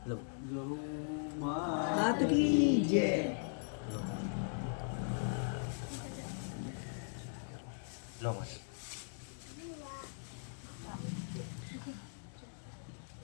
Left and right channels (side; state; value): right; silent; digital silence